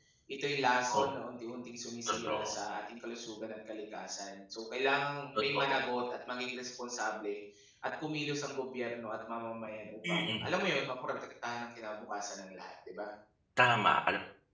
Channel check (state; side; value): identical; both; correlation 1.00